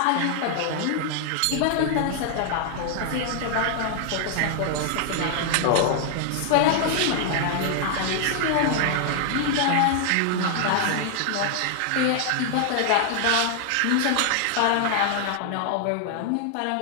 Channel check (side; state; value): both; different; correlation 0.00